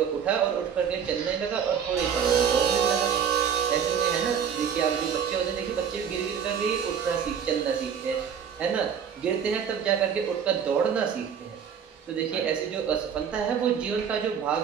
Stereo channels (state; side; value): quieter; left; 7.7 dB